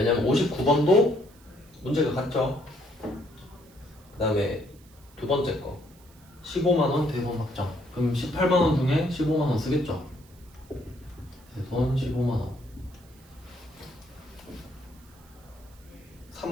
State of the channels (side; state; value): right; noise; hiss, 27 dB below the sound